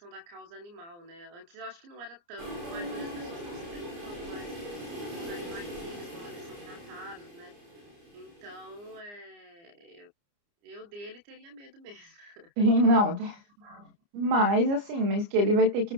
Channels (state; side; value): late; left; 29 ms